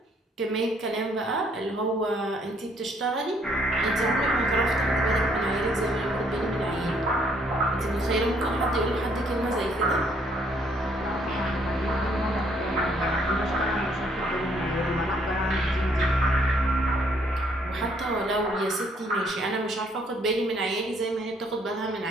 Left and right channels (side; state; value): both; normal; correlation 0.67